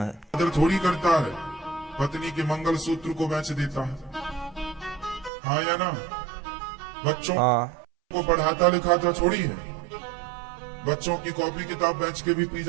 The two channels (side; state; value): left; drops out; at 5.3 s